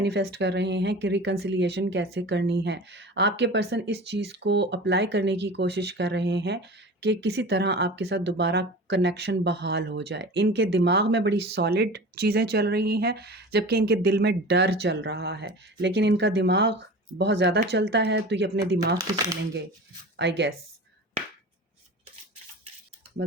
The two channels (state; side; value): normal; both; correlation 0.35